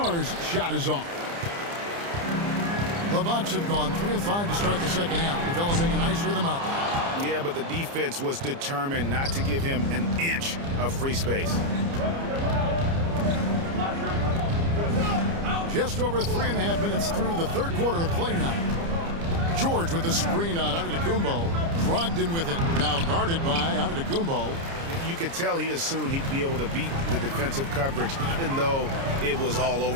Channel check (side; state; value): left; late; 30 ms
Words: shot is off. The Bucks have gone 3 of 5 to start the second half, developing a nice rhythm out there. Yeah, but the defense was determined not to give him an inch of free space. Just over 3.5 minutes through the third quarter of play now. George with the screen on Antetokounmpo. Brogdon with it. Now guarded by Antetokounmpo. You could tell he assumed he'd be able to beat the defensive coverage even though it was all